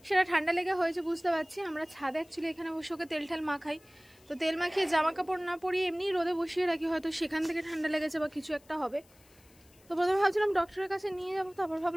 সেটা ঠান্ডা লেগে হয়েছে বুঝতে পারছি। আমরা ছাদে অ্যাকচুয়ালি এখানে বসে ওকে তেল ঠাল মাখাই, তো তেল মাখিয়ে জামা কাপড় না পরিয়ে এমনি রোদে বসিয়ে রাখি, হয়তো সেখান থেকে ঠান্ডা লেগেছে বা কিছু একটা হবে। তো প্রথমে ভাবছিলাম ডক্টরের কাছে নিয়ে যাবো, তারপর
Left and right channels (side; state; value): left; noise; hiss, 28 dB below the sound